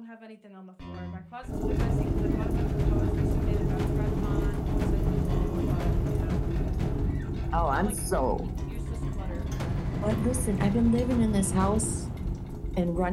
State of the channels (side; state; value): both; identical; correlation 1.00